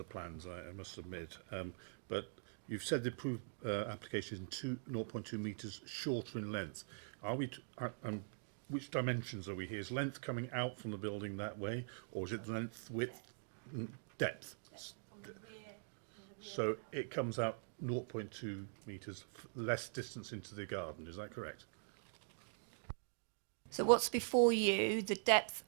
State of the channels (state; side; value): silent; left; digital silence